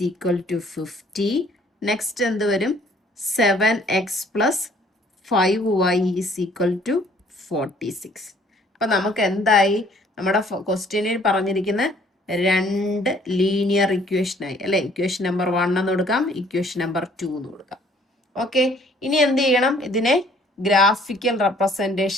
equal to 50. Next എന്ത് വരും? 7x plus 5y is equal to 46. അപ്പൊ നമുക്ക് എന്തായി? നമ്മുടെ ക്വസ്റ്റ്യനിൽ പറഞ്ഞിരിക്കുന്ന 2 ലീനിയർ ഇക്വേഷനായി അല്ലെ? ഇക്വേഷൻ നമ്പർ 1 എന്ന് കൊടുക്കാം, ഇക്വേഷൻ നമ്പർ 2 എന്ന് കൊടുക്കാം. ഓക്കെ, ഇനി എന്ത് ചെയ്യണം? ഇതിനെ ഗ്രാഫിക്കൽ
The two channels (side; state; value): both; normal; correlation 0.59